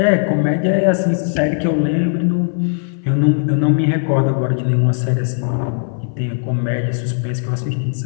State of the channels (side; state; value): right; silent; 58 dB below the other